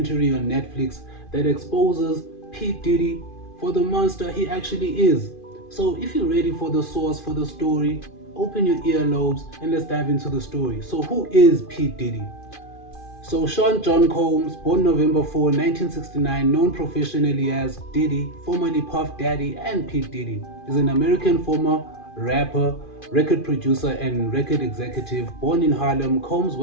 on Netflix that exposes P. Diddy for the monster he actually is. So if you're ready for the source for the story, open your earlobes and let's dive into the story. So who is P. Diddy? So Sean John Combs, born November 4, 1969, known professionally as Diddy, formerly Puff Daddy and P. Diddy, is an American former rapper, record producer, and record executive. Born in Harlem, Combs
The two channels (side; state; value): right; late; 2.4 ms